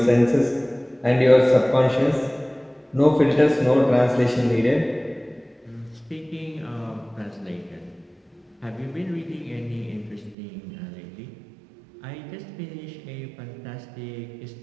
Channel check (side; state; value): left; drops out; at 10.4 s